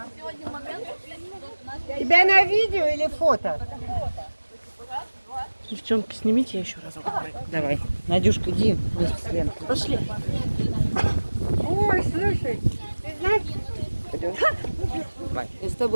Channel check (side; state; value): both; inverted; correlation -1.00